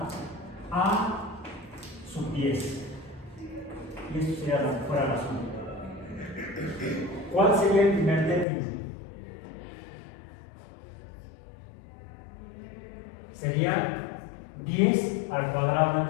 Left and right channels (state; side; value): drops out; right; at 8.5 s